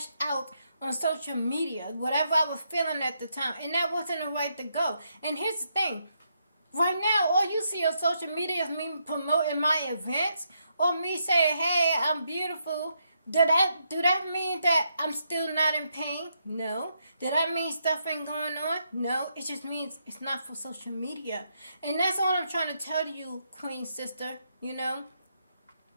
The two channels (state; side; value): inverted; both; correlation -0.79